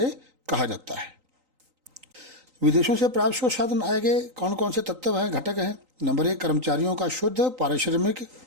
कहा जाता है। विदेशों से प्राप्त शुद्ध साधन आय के कौन कौन से तत्व हैं, घटक हैं? नंबर 1, कर्मचारियों का शुद्ध पारिश्रमिक।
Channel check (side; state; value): left; late; 3.9 ms